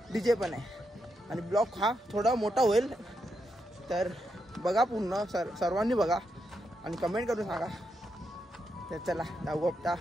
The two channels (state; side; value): normal; both; correlation 0.83